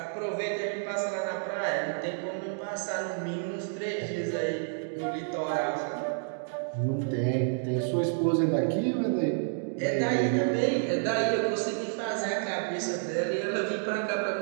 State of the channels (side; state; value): left; silent; digital silence